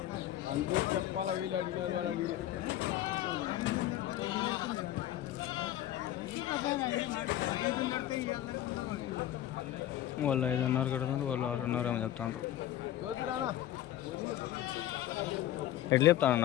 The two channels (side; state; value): right; quieter; 13.0 dB